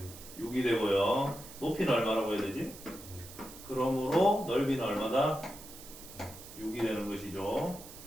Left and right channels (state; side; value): noise; right; hiss, 16 dB below the sound